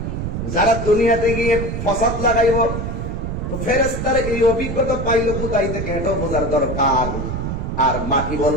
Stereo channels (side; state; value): right; noise; rumble, 4 dB below the sound